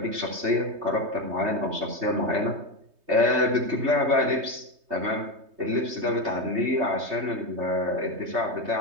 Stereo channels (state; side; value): late; left; 3.2 ms